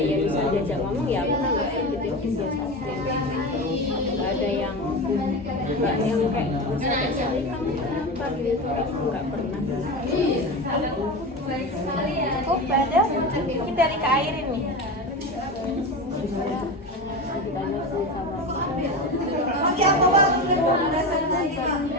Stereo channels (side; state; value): both; normal; correlation 0.24